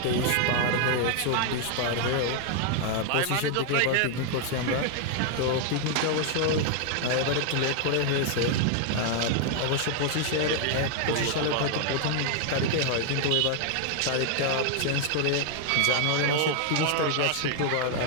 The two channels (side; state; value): both; different; correlation 0.00